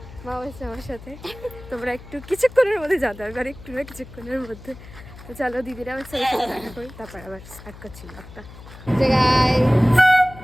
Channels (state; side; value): noise; left; hum, 17 dB below the sound